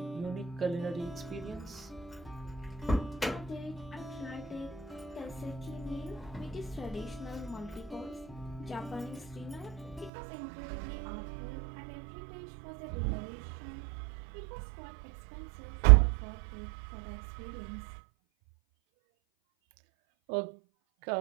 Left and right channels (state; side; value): drops out; left; at 10.1 s